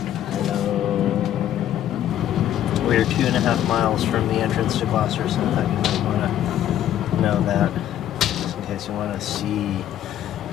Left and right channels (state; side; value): quieter; right; 11.5 dB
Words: We're 2.5 miles from the entrance to Gloucester, so I thought you might want to know that, just in case you want to see